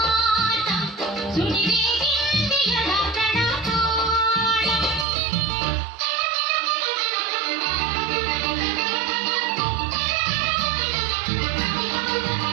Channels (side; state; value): left; drops out; at 5.1 s